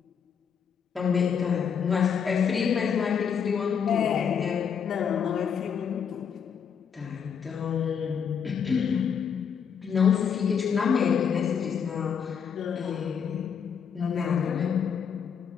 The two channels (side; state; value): right; quieter; 7.2 dB